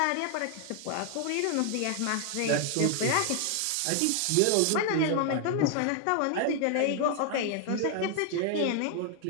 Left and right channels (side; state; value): both; different; correlation 0.00